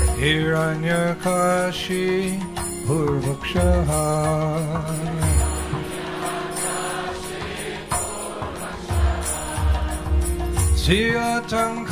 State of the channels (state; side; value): identical; both; correlation 1.00